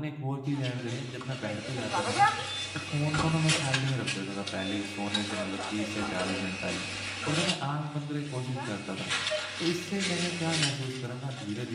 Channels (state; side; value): identical; both; correlation 1.00